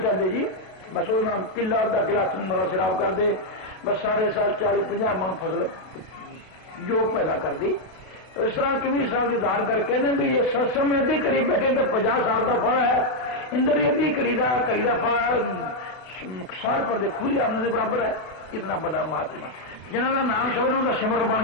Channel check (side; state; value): right; late; 32 ms